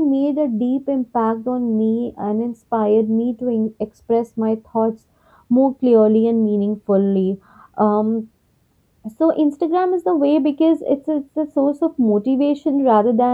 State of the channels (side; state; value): both; identical; correlation 1.00